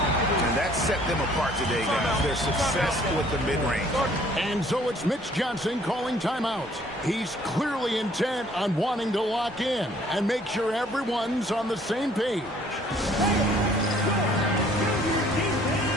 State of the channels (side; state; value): both; normal; correlation 0.59